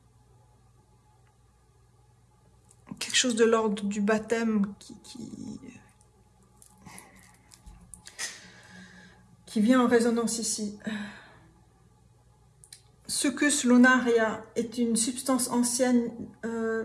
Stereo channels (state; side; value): identical; both; correlation 1.00